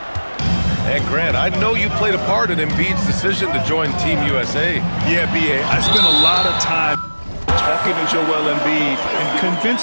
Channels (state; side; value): inverted; both; correlation -1.00